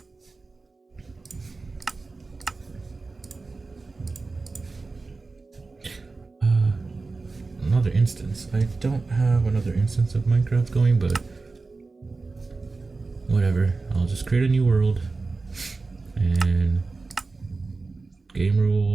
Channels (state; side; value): quieter; left; 3.8 dB